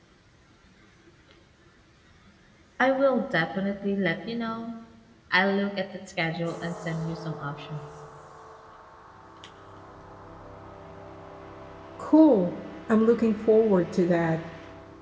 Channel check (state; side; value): identical; both; correlation 1.00